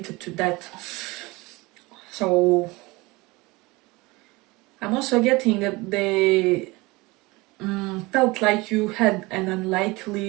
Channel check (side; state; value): left; quieter; 23.0 dB